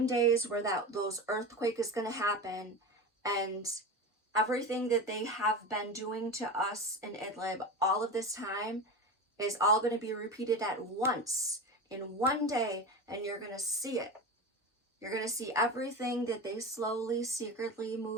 days where those earthquake is going to happen, and everything that they have been doing to us in Idlib all of this time is all going to be repeated at once in one day, and you're going to see it. You're going to see everything that they slowly, secretly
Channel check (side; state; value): both; normal; correlation 0.25